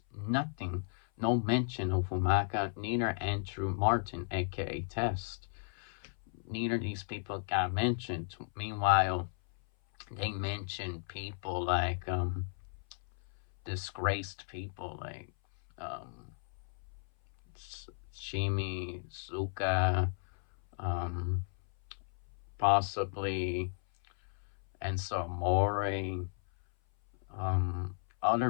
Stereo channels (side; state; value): right; silent; 55 dB below the other